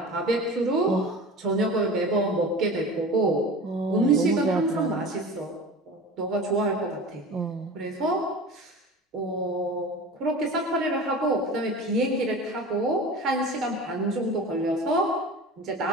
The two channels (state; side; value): normal; both; correlation 0.35